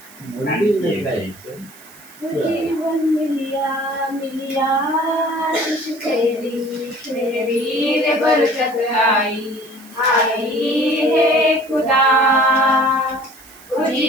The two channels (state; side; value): noise; right; hiss, 22 dB below the sound